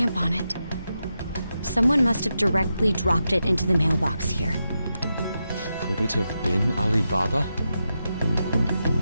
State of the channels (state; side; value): inverted; both; correlation -0.88